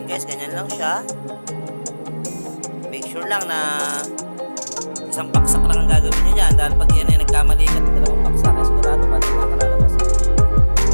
guys, ganyan lang siya. Make sure lang na isang paksak lang ang gagawin nyo dyan. Dahil pag yan ay nagkamali ka, dalawang paksak, ay sigurado pa din nakalalabas.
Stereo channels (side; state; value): both; inverted; correlation -1.00